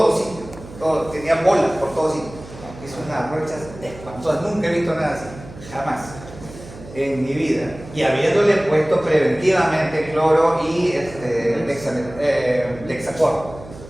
sitio, tenía bolas por todos sitios. Hizo unas ronchas espantosas, nunca he visto nada así, jamás en mi vida. Y habiéndole puesto preventivamente cloro y Lexacor.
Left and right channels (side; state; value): right; noise; hum, 17 dB below the sound